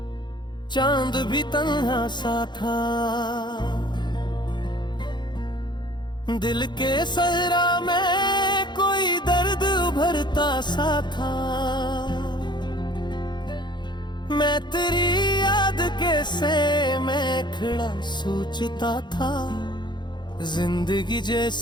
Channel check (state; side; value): late; right; 0.21 ms